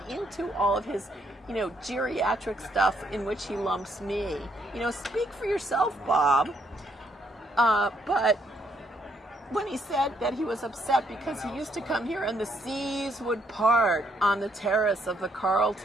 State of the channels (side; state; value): both; normal; correlation 0.72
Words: into all of his, geriatric stuff in which he lumps me. Speak for yourself, Bob. But when he said that he was upset because he used to come here and the seas would part on the terrace of the